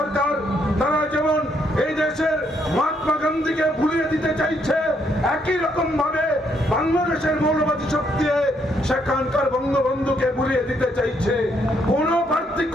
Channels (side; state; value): both; normal; correlation 0.73